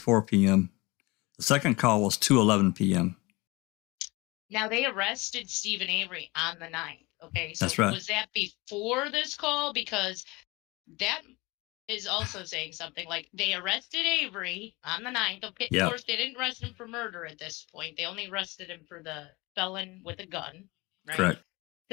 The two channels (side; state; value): right; quieter; 23.7 dB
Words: p.m. The second call was 2:11 p.m. Now, they arrested Stephen Avery on the 9th. Okay, so That's right. Was that before this call? Because that is also saying something. Like, they arrested Avery on the 9th. Okay, Yep. Of course, they didn't arrest him for murder at this point. They only arrested him for the felon with a gun, right? Correct.